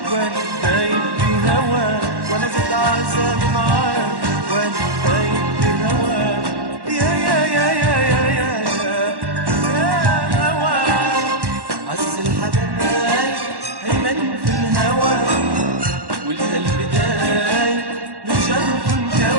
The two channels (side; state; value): left; late; 1.1 ms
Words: وانا دايب بهواك، وانا زاد عذابي معاك وانا دايب بهواك. يا يا يا يا يا يا يا هواك. عز الحبايب هيمن في الهوى، والقلب داي من جرح